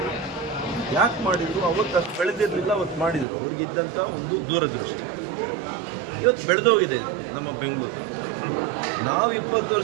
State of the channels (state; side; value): drops out; left; at 3.2 s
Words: ಯಾಕೆ ಮಾಡಿದರು? ಅವತ್ತು ಅಷ್ಟು ಬೆಳೆದಿರಲಿಲ್ಲ, ಅವತ್ತು ಮಾಡಿದರು. ಅವ್ರಿಗಿದ್ದಂಥ ಒಂದು ದೂರದೃಷ್ಟಿ. ಇವತ್ತು ಬೆಳೆದೋಗಿದೆ ನಮ್ಮ ಬೆಂಗಳೂರು. ನಾವು 20